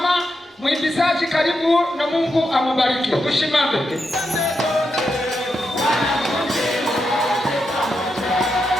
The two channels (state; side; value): normal; both; correlation 0.85